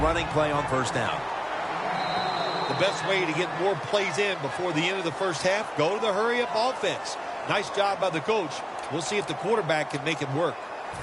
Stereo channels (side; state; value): both; identical; correlation 1.00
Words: play on first down. The best way to get more plays in before the end of the first half, go to the hurry-up offense. Nice job by the coach. We'll see if the quarterback can make it work.